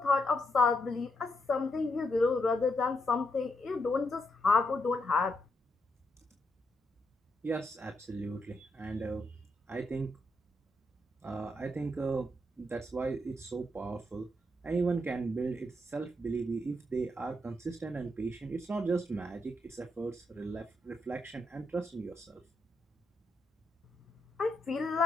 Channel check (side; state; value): both; normal; correlation 0.80